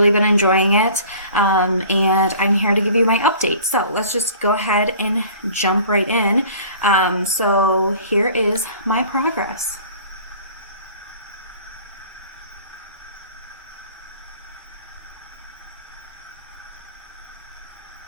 been enjoying it, and I'm here to give you my update. So let's just go ahead and jump right in. So here is my progress.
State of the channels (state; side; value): inverted; both; correlation -0.47